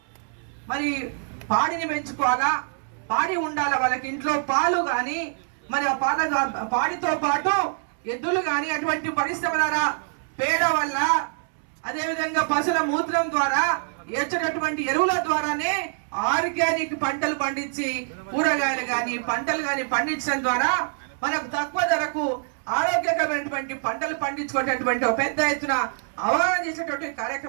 మరి పాడిని పెంచుకోవాలా, పాడి ఉండాలా, వాళ్ళకి ఇంట్లో పాలు కానీ మరి ఆ పాడితో పాటు ఎద్దులు కానీ అటువంటి పరిశ్రమ ద్వారా పేడ వల్ల అదేవిధంగా పశువుల మూత్రం ద్వారా ఏర్చేటటువంటి ఎరువుల ద్వారానే ఆర్గానిక్ పంటలు పండించి కూరగాయలు కానీ పంటలు కానీ పండించడం ద్వారా మనకు తక్కువ ధరకు ఆరోగ్యకరమైనటువంటి పంటలు పండించుకునేటటువంటి ఒక పెద్ద ఎత్తున అవగాహన చేసేటువంటి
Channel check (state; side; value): silent; left; 62 dB below the other